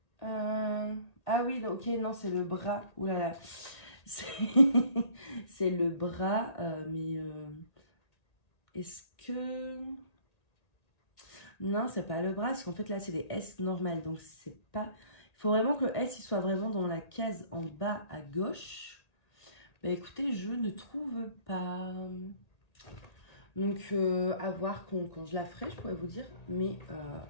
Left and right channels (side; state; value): right; late; 1.8 ms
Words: Ah oui, ok, non, c'est le bras. Ouh là là. C'est le bras, mais est-ce que... Non, c'est pas le bras, parce qu'en fait, là, c'est des S normales, donc c'est pas... Il faut vraiment que le S, il soit vraiment dans la case en bas à gauche. Bah écoutez, je ne trouve pas... Donc, à voir quand je la ferai, je pourrais vous dire. Mais,